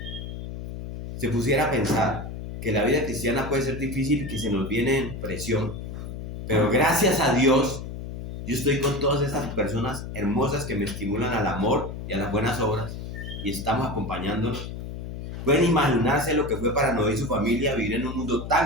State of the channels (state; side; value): noise; left; hum, 8 dB below the sound